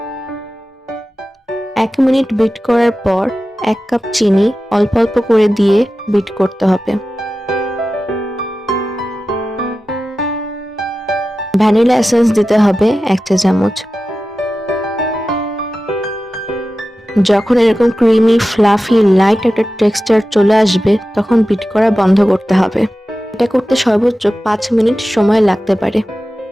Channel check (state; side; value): normal; both; correlation 0.94